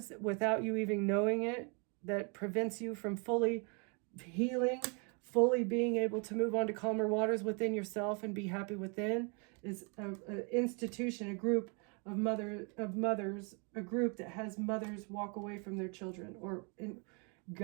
without you even knowing it, that prevents you from fully healing, fully being able to move on to calmer waters within yourself and be happy within. Is an institution, a group of mothers, a group that has mothers walk away from their children, or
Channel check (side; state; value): left; quieter; 35.0 dB